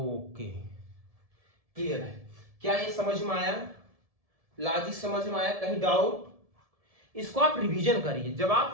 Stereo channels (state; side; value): late; left; 1.7 ms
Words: क्लियर है? क्या ये समझ में आया, लॉजिक समझ में आया, कहीं डाउट? इसको आप रिवीजन करिए। जब आप